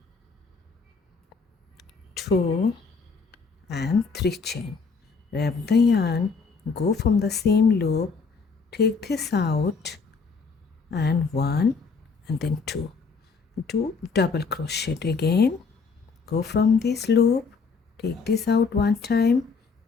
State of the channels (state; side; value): quieter; right; 4.9 dB